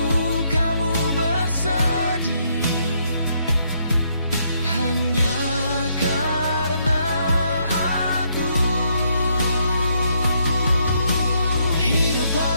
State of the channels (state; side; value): inverted; both; correlation -0.73